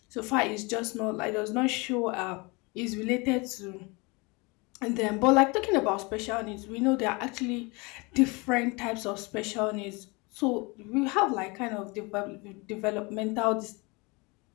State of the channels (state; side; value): quieter; right; 27.3 dB